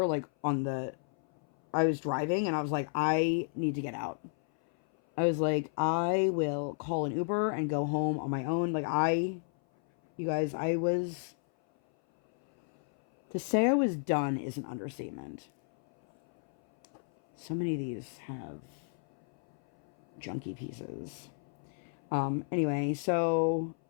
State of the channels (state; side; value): silent; right; 56 dB below the other